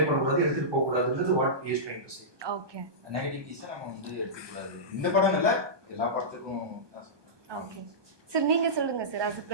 பண்ண கூடாது, எடுத்துட்டு போக கூடாதுன்றது what is trying to say. Okay, நெகட்டிவிட்டிஸை நம்ம வந்து எடுத்துக்க கூடாது. இந்த படம் இல்ல, எல்லா படத்துக்கும் தான் சொல்றேன். ஓகே சார், நீங்க சொல்லுங்க சார். as a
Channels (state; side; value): late; left; 1.2 ms